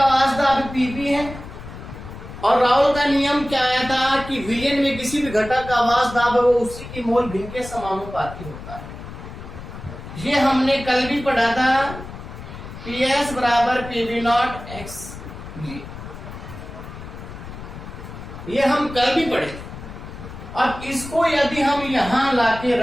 वाष्प दाब पीबी है और राउल का नियम क्या आया था कि विलयन में किसी भी घटक का वाष्प दाब है वो उसी की मोल भिन्न के समानुपाती होता है। ये हमने कल भी पढ़ा था, PS बराबर PV नॉट एक्स, ये हम कल भी पढ़े। अब इसको यदि हम यहां लाके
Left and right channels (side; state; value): left; noise; rumble, 12 dB below the sound